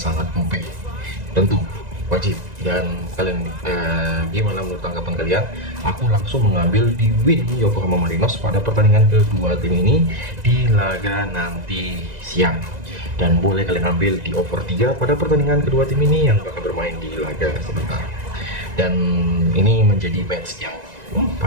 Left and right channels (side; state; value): left; late; 1.9 ms